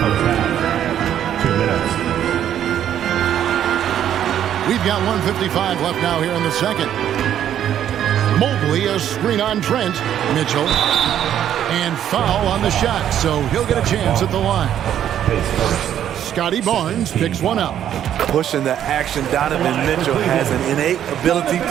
2 minutes. We've got 1:55 left now here in the second. Mobley, a screen on Trent. Mitchell. And foul on the shot, so he'll get a chance at the line. Scotty Barnes picks one up. Pushing the action, Donovan Mitchell has an innate ability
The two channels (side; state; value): left; quieter; 10.4 dB